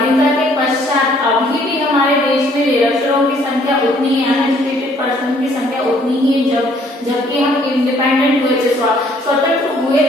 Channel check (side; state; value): both; normal; correlation 0.62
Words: के पश्चात अभी भी हमारे देश में निरक्षरों की संख्या उतनी है, अनएजुकेटेड पर्सन की संख्या उतनी ही है। जबकि हम इंडिपेंडेंट हुए थे, स्वतंत्र हुए